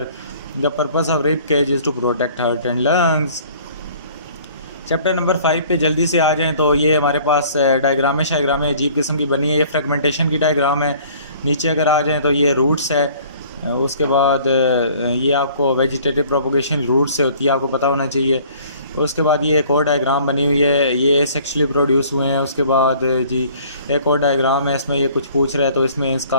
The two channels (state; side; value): inverted; both; correlation -0.53